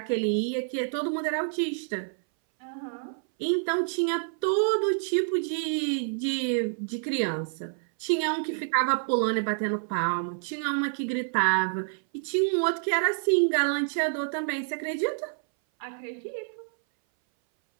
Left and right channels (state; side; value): silent; left; 59 dB below the other